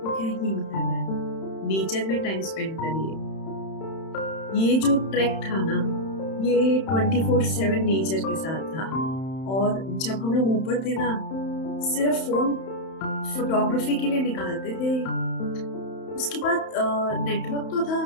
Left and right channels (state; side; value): late; right; 31 ms